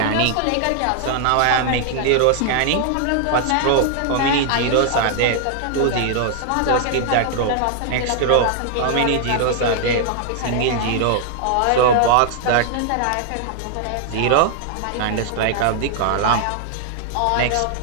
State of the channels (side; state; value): both; different; correlation 0.00